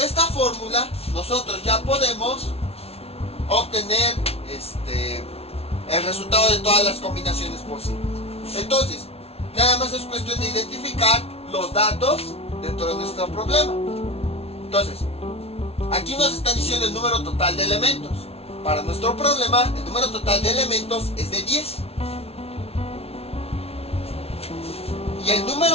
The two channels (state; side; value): late; right; 0.29 ms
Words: fórmula, nosotros ya podemos obtener el resultado de todas las combinaciones posibles. Entonces, nada más es cuestión de identificar los datos dentro de nuestro problema. Entonces, aquí nos están diciendo el número total de elementos. Para nuestro problema, el número total de elementos es de 10. Y el